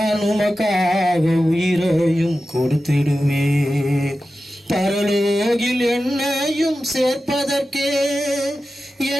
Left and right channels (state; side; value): normal; both; correlation 0.93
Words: உமக்காக உயிரையும் கொடுத்திடுவே. பரலோகில் என்னையும் சேர்ப்பதற்கே